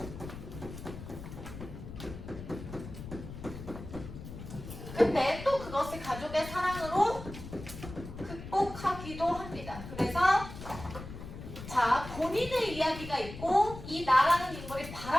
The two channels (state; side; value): noise; left; rumble, 11 dB below the sound